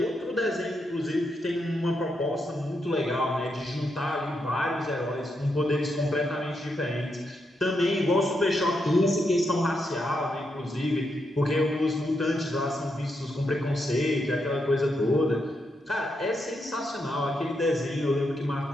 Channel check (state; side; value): normal; both; correlation 0.82